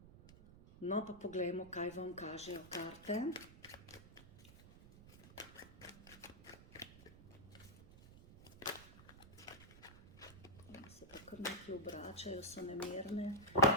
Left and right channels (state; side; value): noise; right; rumble, 19 dB below the sound